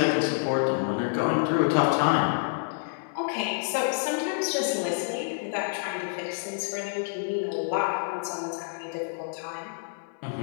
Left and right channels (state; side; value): silent; right; 59 dB below the other